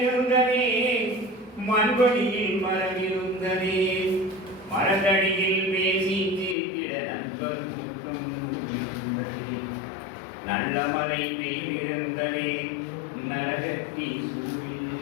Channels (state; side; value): drops out; right; at 6.6 s